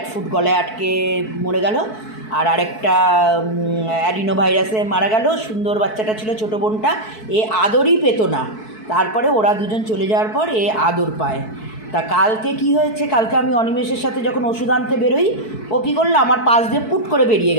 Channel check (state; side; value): late; right; 4.6 ms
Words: ফুড গলায় আটকে মরে গেল, আর আরেকটা অ্যাডিনো ভাইরাসে মারা গেল। সুন্দর বাচ্চাটা ছিল, ছোটো বোনটা, এ আদরই পেতো না। তারপরে ওরা দুজন চলে যাওয়ার পর এ আদর পায়। তা কালকে কি হয়েছে, কালকে আমি অনিমেষের সাথে যখন ওষুধ আনতে বেরোই, ও কী করলো, আমার পাশ দিয়ে পুট করে বেরিয়ে